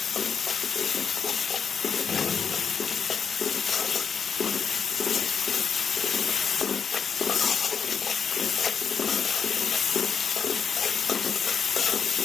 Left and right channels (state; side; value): quieter; right; 6.4 dB